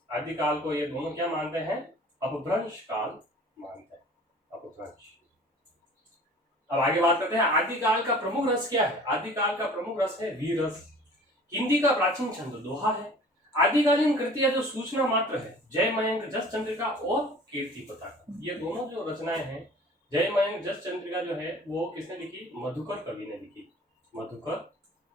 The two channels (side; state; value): both; normal; correlation 0.46